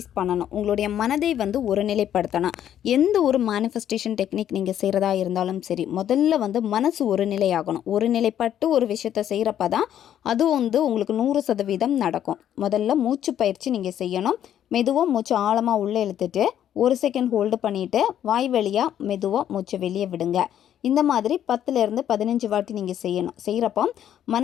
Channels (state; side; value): quieter; right; 10.5 dB